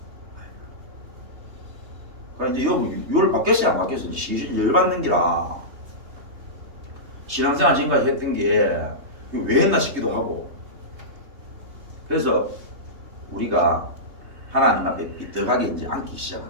말이야. 그러니까 이제 율 바뀌었어요 안 바뀌었어요? 이제 열 받는 기라 신앙생활 지금까지 했던 게 왜 했나 싶기도 하고 그래서 우리가 하나님 앞에 삐뚤하게 이제 앉기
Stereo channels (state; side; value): late; left; 3.2 ms